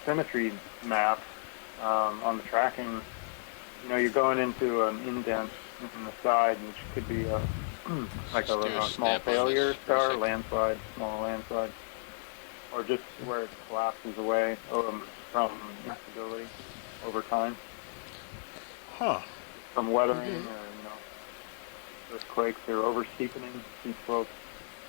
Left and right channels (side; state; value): right; silent; 56 dB below the other